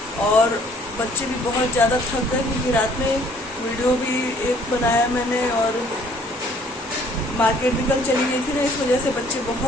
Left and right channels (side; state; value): both; normal; correlation 0.59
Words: और बच्चे भी बहुत ज़्यादा थक गए क्योंकि रात में वीडियो भी एक बनाया मैंने और मार्केट भी कल चली गई थी ना, इस वजह से बच्चे